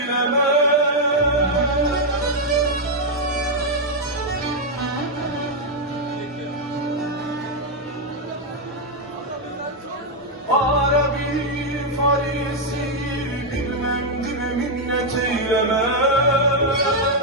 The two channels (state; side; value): normal; both; correlation 0.00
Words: Arabi Farisi bilmem dime minnet eyleme.